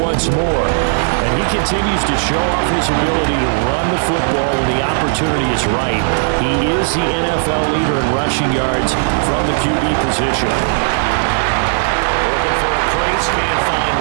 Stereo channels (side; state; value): left; silent; 59 dB below the other